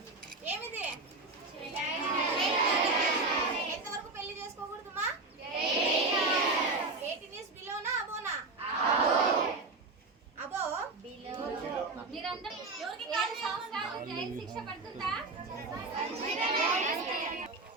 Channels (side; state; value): left; quieter; 3.4 dB